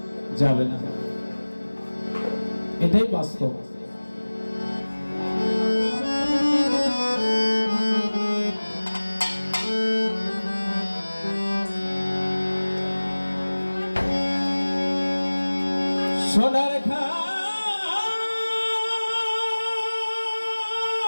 যাবে না, এটাই বাস্তব। সোনার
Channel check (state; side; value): inverted; both; correlation -1.00